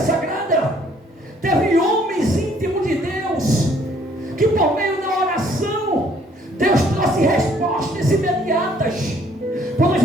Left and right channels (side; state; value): both; normal; correlation 0.62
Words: teve homens íntimos de Deus que por meio da oração Deus trouxe respostas imediatas. Quando a